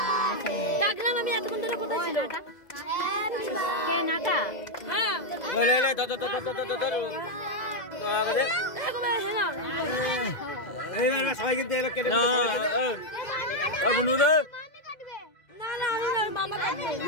ডাকলাম আমি এতক্ষণ ধরে কোথায় ছিল? কে নাটা? হ্যাঁ। লে এই সবাইকে দে কেটে দে। বুনু দে। না আমি না মামা কাটবে।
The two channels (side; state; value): right; late; 2.0 ms